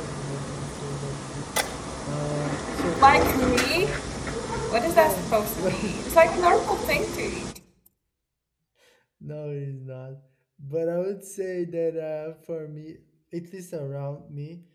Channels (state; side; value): identical; both; correlation 1.00